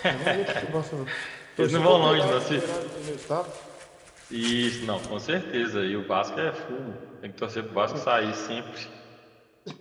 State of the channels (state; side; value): identical; both; correlation 1.00